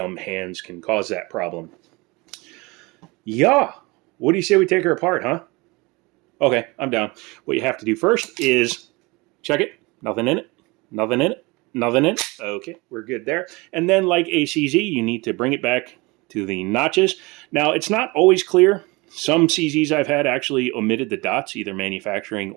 hands can cause that problem. Yeah, what do you say we take her apart, huh? Okay, I'm down. What you have to do first is check it. Nothing in it. Nothing in it. Nothing in it. Okay, we're good there. And then like ACZ, you need to bring it back to the notches. Now, it's not always clear. Some CZs I've had actually omitted the dots, either manufacturing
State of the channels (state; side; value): quieter; left; 25.0 dB